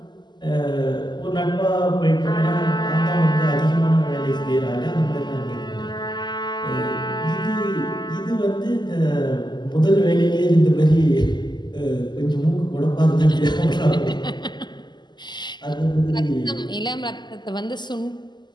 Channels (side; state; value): right; late; 0.21 ms